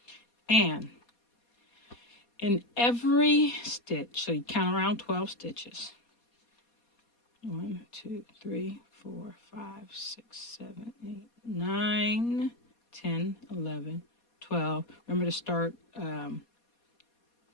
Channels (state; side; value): late; right; 4.2 ms